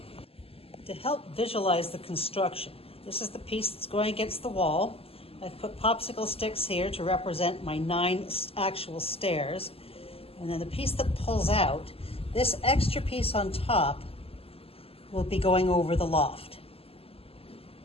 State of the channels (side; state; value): right; late; 0.28 ms